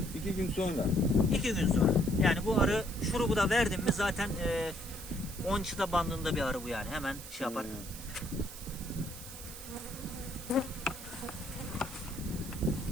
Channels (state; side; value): noise; right; hiss, 13 dB below the sound